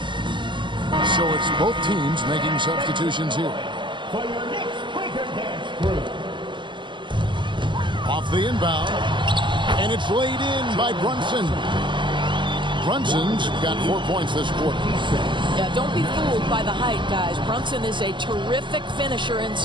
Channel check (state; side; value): late; left; 0.23 ms